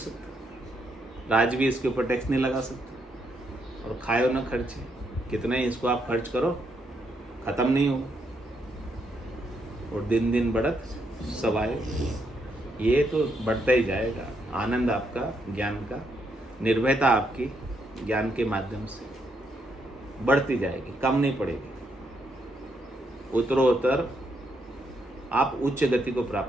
राज भी इसके ऊपर टैक्स नहीं लगा सकता, और खाए न खर्चे। कितना ही इसको आप खर्च करो खत्म नहीं होगा, और दिन दिन बढ़त सवाए। ये तो बढ़ता ही जाएगा। आनंद आपका ज्ञान का, निर्भयता आपकी ज्ञान के माध्यम से बढ़ती जाएगी, कम नहीं पड़ेगी। उत्तरोत्तर आप उच्च गति को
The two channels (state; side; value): normal; both; correlation 0.77